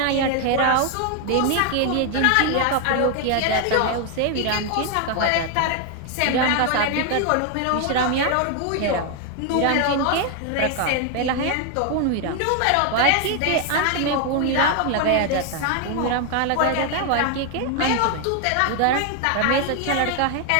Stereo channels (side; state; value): both; different; correlation 0.01